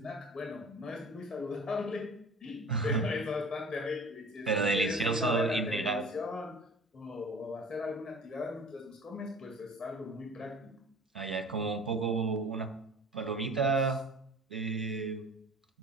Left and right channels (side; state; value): both; normal; correlation 0.43